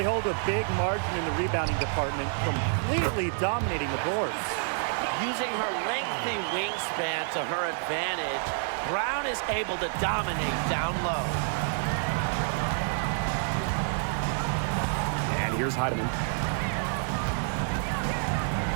hold a big margin in the rebounding department, completely dominating the boards. Using her lengthy wingspan to her advantage, Brown is able to dominate down low. And here's Heidemann.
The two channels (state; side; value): silent; left; 59 dB below the other